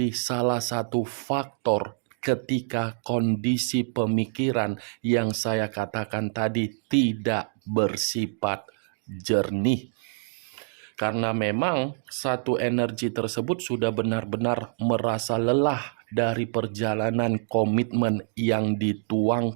salah satu faktor ketika kondisi pemikiran yang saya katakan tadi tidak bersifat jernih. Karena memang satu energi tersebut sudah benar-benar merasa lelah dari perjalanan komitmen yang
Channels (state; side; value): silent; left; digital silence